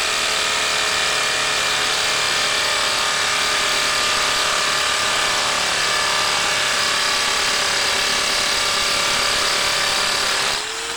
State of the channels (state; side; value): identical; both; correlation 1.00